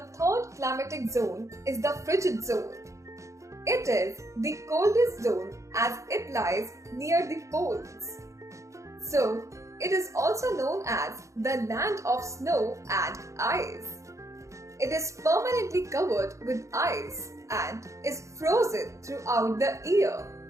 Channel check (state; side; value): late; left; 0.15 ms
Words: third climatic zone is the frigid zone. It is the coldest zone as it lies near the poles. So, it is also known as the land of snow and ice. It is permanently covered with ice and is frozen throughout the year.